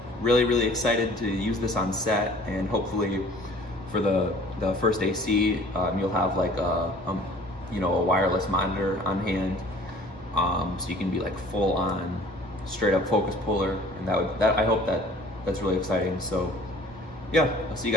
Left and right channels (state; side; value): normal; both; correlation 0.51